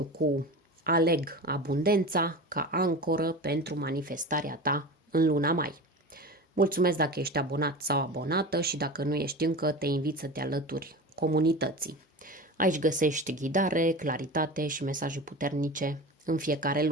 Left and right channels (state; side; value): normal; both; correlation 0.31